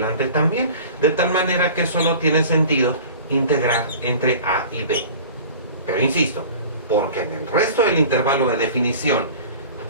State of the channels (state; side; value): inverted; both; correlation -0.41